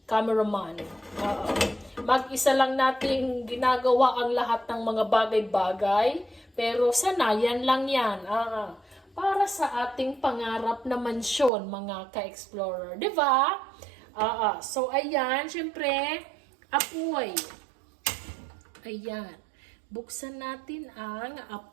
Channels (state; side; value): drops out; left; at 11.5 s